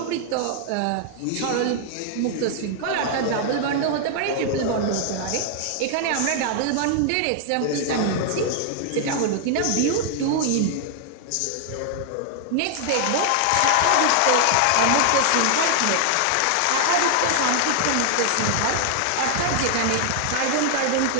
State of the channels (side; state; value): both; different; correlation 0.00